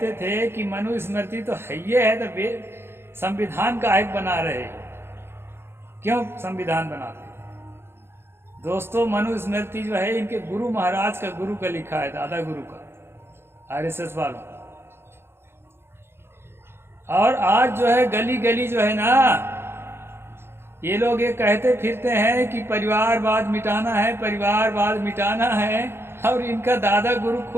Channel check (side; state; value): left; late; 0.12 ms